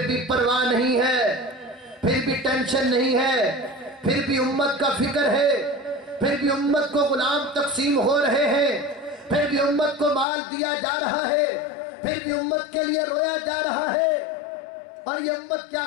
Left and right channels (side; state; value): right; drops out; at 10.2 s